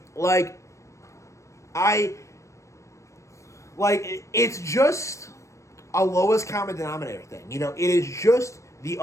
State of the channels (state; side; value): late; right; 0.15 ms